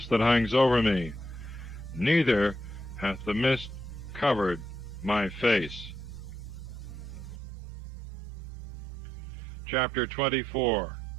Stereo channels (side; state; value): left; drops out; at 7.4 s